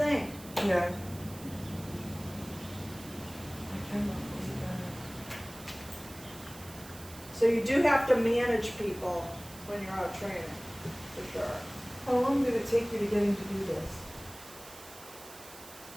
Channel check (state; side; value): noise; right; hiss, 17 dB below the sound